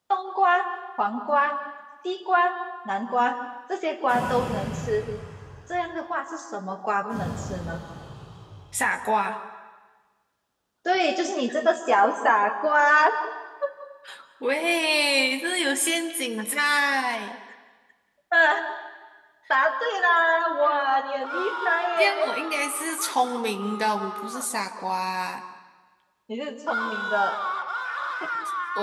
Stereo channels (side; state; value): both; identical; correlation 1.00